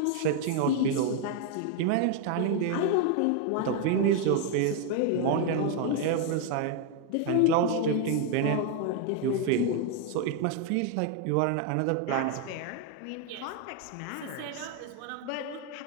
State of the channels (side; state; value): both; different; correlation 0.01